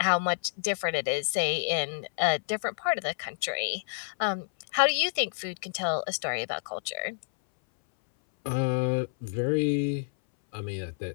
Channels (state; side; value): silent; right; 59 dB below the other